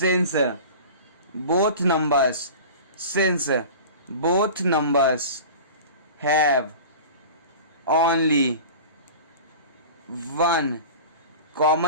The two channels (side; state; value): both; inverted; correlation -0.36